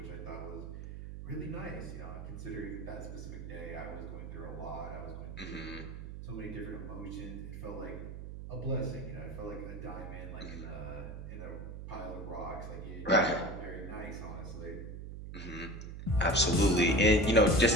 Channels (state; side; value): noise; right; hum, 9 dB below the sound